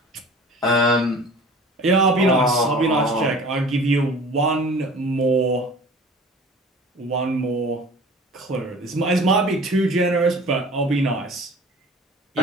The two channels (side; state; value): both; normal; correlation 0.44